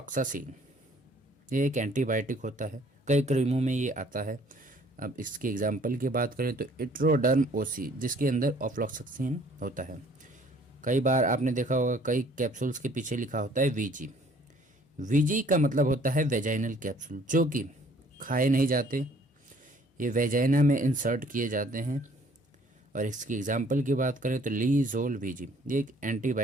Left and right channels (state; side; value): normal; both; correlation 0.57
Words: ये एक एंटीबायोटिक होता है, कई क्रीमों में ये आता है। अब इसके एग्जाम्पल की बात करें तो इट्रोडर्म OC, जिसके अंदर ऑफ्लॉक्सासिन होता है। कई बार आपने देखा होगा कई कैप्सूल्स के पीछे लिखा होता है VG। VG का मतलब होता है वेजाइनल कैप्सूल, जो कि खाए नहीं जाते, ये वेजाइना में इंसर्ट किए जाते हैं। और इसकी एग्जाम्पल की बात करें तो लीजोल VG, ये एक